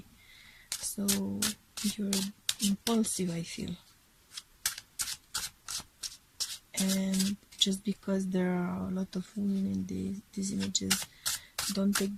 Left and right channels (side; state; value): both; identical; correlation 1.00